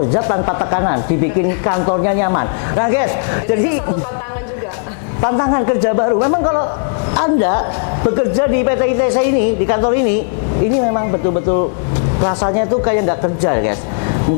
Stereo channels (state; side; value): silent; right; digital silence